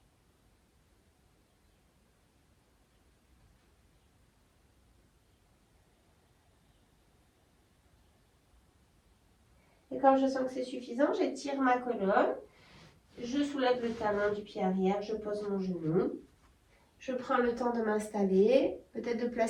Et quand je sens que c'est suffisant, j'étire ma colonne. Je soulève le talon du pied arrière, je pose mon genou. Je prends le temps de m'installer, peut-être de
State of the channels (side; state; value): both; identical; correlation 1.00